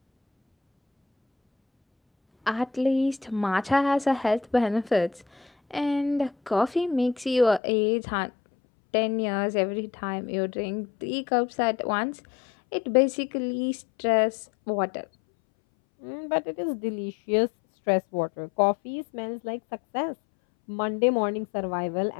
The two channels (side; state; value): right; drops out; at 7.6 s